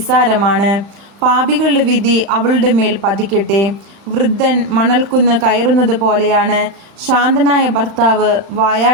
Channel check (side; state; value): left; late; 35 ms